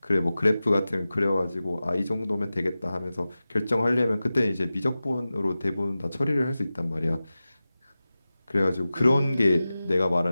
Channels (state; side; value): inverted; both; correlation -0.95